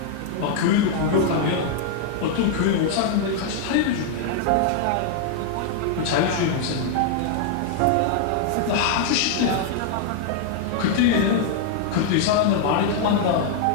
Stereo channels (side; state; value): both; different; correlation 0.00